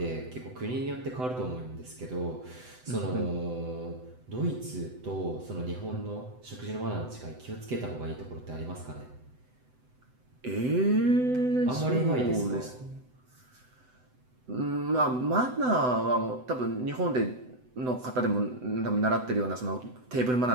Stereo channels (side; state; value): left; late; 7.9 ms